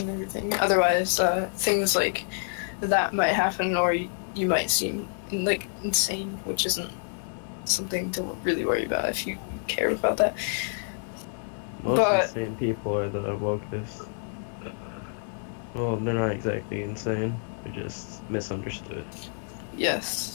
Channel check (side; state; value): right; silent; digital silence